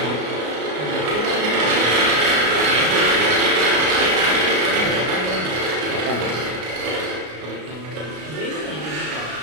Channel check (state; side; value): late; left; 33 ms